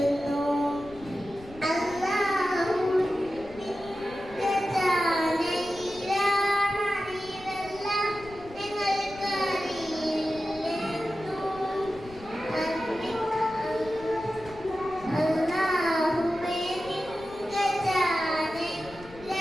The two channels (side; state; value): left; noise; rumble, 19 dB below the sound